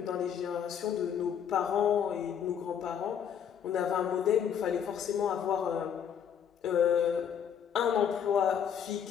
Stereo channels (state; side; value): quieter; right; 8.3 dB